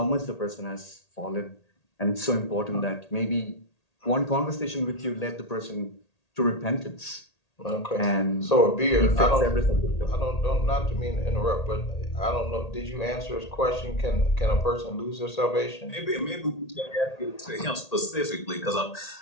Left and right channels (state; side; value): late; right; 1.8 ms